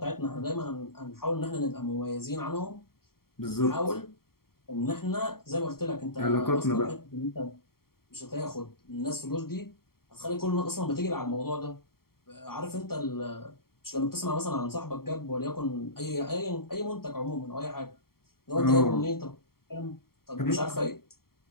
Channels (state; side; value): late; right; 0.93 ms